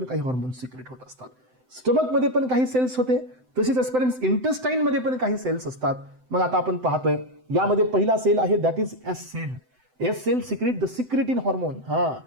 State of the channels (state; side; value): late; left; 7.8 ms